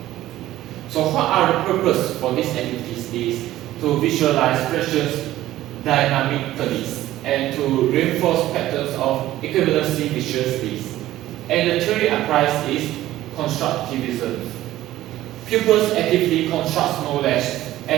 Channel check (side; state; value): left; quieter; 14.7 dB